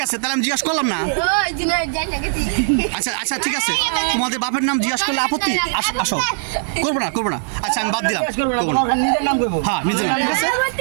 আছে, তাহলে আমি জিজ্ঞাসা করলাম না। ওই জুনাইদ যাই না গেছি। আচ্ছা ঠিক আছে, তোমাদের বাপের নাম জিজ্ঞাসা করলে আপত্তি? আসো, করবো না। আচ্ছা আমি বাদ দিলাম, করবো না। হ্যাঁ নিজের নাম, ঠিক আছে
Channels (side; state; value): left; silent; digital silence